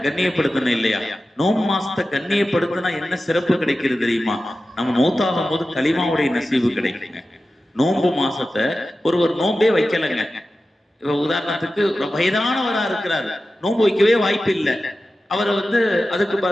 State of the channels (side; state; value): both; normal; correlation 0.94